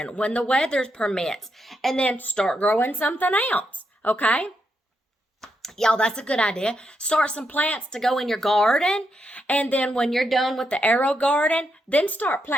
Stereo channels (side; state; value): both; normal; correlation 0.81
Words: when the weather permits, and then start growing something else, okay? Y'all, that's a good idea. Start some plants to go in your garden, and then when you're done with the AeroGarden, then start